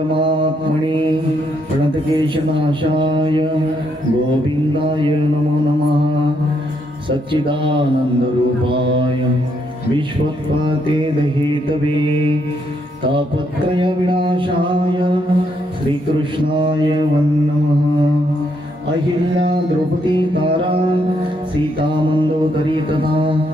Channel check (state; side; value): normal; both; correlation 0.75